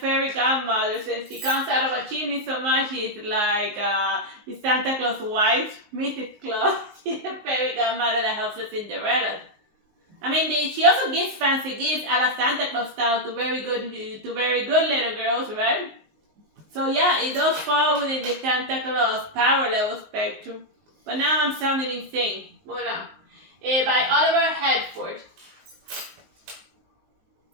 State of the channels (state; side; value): late; left; 19 ms